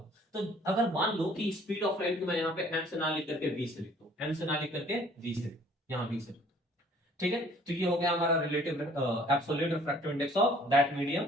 तो अगर मान लो कि स्पीड ऑफ लाइट को मैं यहाँ पे m से ना लिख करके v से लिखता हूं, m से ना लिख करके v से, यहाँ v से, ठीक है। तो ये हो गया हमारा relative absolute refractive index of that medium,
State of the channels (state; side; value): normal; both; correlation 0.56